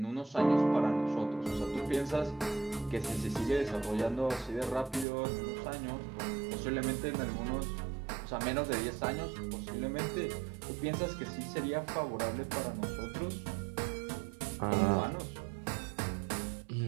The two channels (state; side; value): drops out; left; at 5.1 s